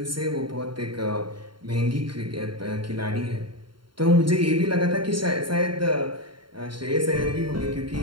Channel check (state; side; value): late; left; 0.73 ms